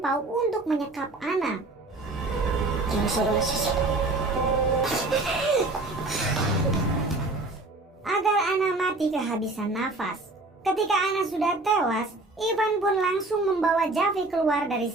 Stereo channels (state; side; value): quieter; left; 3.0 dB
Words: Paul untuk menyekap Anna. Agar Anna mati kehabisan nafas. Ketika Anna sudah tewas, Ivan pun langsung membawa Javi keluar dari